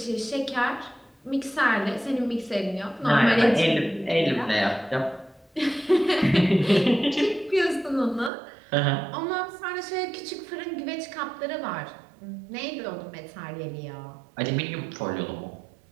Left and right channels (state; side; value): drops out; left; at 8.3 s